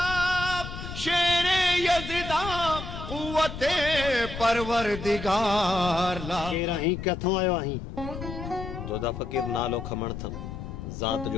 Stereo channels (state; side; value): noise; left; rumble, 8 dB below the sound